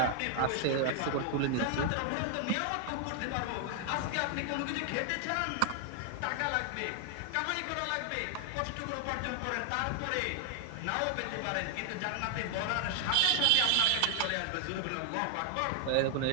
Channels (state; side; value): different; both; correlation 0.00